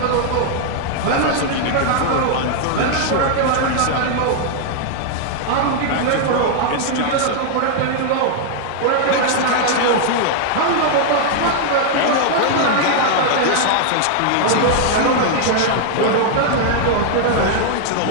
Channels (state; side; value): different; both; correlation 0.00